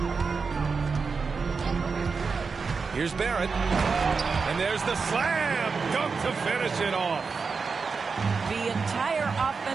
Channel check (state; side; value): quieter; left; 5.0 dB